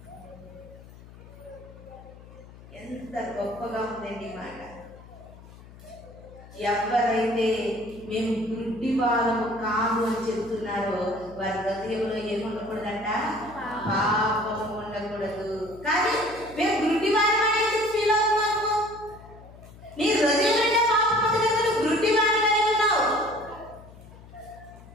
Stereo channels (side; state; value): left; noise; hum, 19 dB below the sound